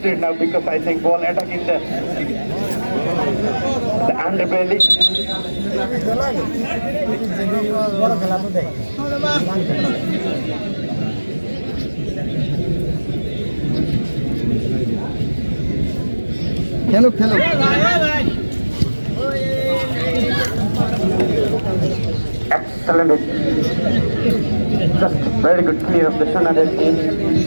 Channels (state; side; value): inverted; both; correlation -1.00